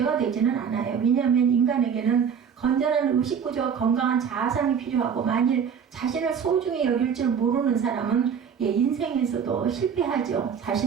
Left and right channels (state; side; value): quieter; left; 7.2 dB